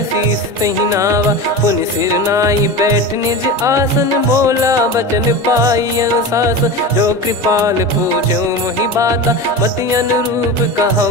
शीस तहि नावा पुनि सिर नाई बैठ निज आसन बोला बचन पाई अनुशासन जो कृपाल पूछो मोहि बाता मति अनुरूप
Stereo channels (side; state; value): both; normal; correlation 0.26